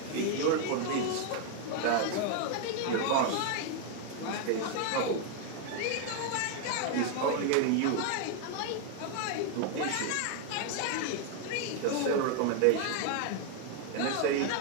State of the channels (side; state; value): both; different; correlation 0.00